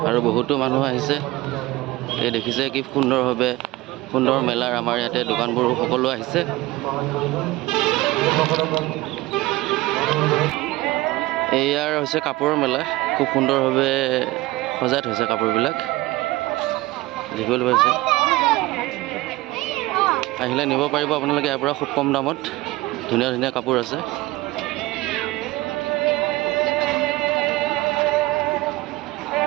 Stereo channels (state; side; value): quieter; left; 19.2 dB